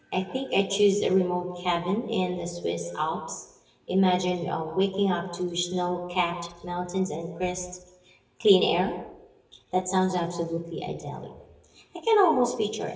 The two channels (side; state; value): both; identical; correlation 1.00